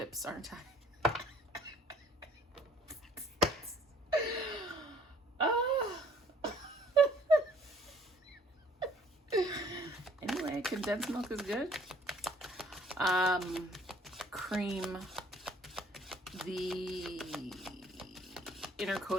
aren't I? Anyway, condensed milk is good. Cream, the inner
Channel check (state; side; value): normal; both; correlation 0.58